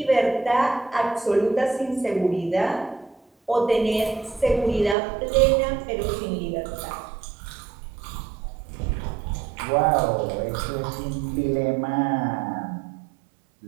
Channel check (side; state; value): left; drops out; at 5.0 s